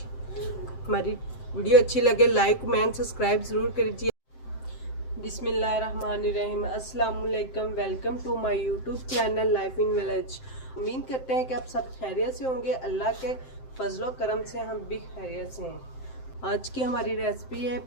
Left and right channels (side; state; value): right; late; 7.7 ms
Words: हमारी वीडियो अच्छी लगे लाइक कमेंट सब्सक्राइब ज़रूर कीजिए। बिस्मिल्लाहिर्रहमानिर्रहीम। अस्सलाम वालेकुम। Welcome to my YouTube channel life in village. उम्मीद करते हैं कि आप सब खैरियत से होंगे। अल्लाह के फजलो करम से हम भी खैरियत से हैं। आज की हमारी रेसिपी है